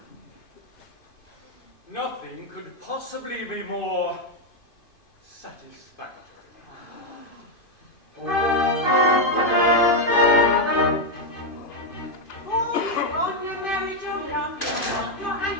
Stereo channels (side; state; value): right; late; 2.5 ms